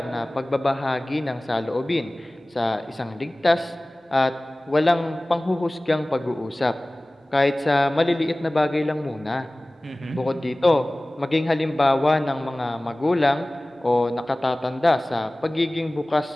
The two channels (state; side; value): normal; both; correlation 0.98